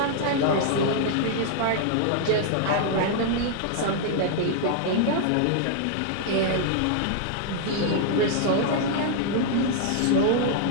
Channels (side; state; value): both; different; correlation -0.01